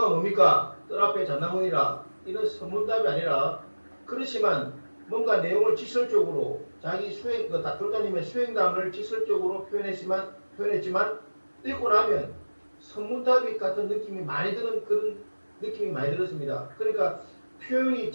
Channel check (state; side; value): inverted; both; correlation -1.00